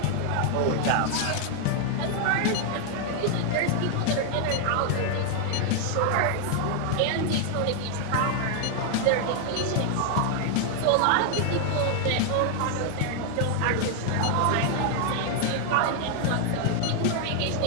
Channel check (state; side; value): different; both; correlation 0.00